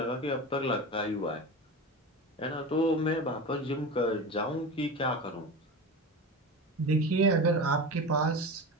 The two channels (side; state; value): both; normal; correlation 0.27